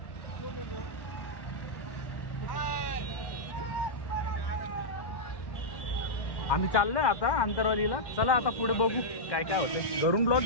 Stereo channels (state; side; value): late; right; 1.1 ms